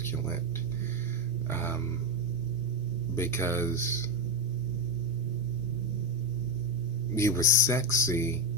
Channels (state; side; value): noise; left; hum, 18 dB below the sound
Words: because you were sexy